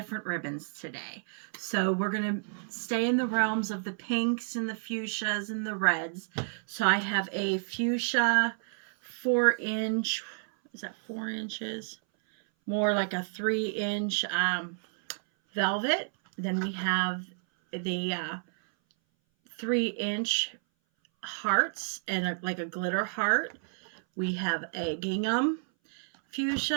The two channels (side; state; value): left; silent; 58 dB below the other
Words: ribbons today. So we're going to stay in the realms of the pinks and the fuchsias and the reds. So I have a fuchsia 4-inch, is that 4 inches? More like a 3-inch velvet. Then we have the 3-inch hearts and like a glitter heart. We have a gingham